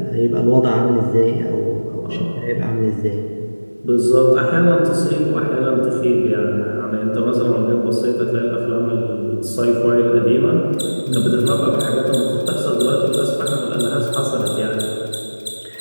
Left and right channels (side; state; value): both; inverted; correlation -1.00